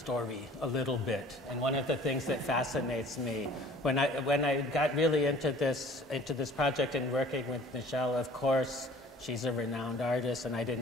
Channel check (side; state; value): both; normal; correlation 0.49